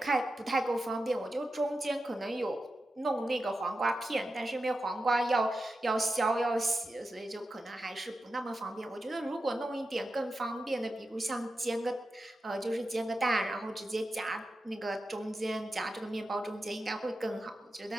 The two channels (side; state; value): both; normal; correlation 0.91